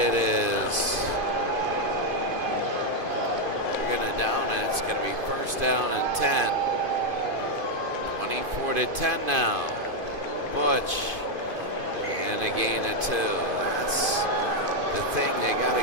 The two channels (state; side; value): late; left; 2.5 ms